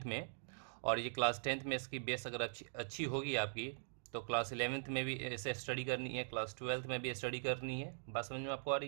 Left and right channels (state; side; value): silent; left; digital silence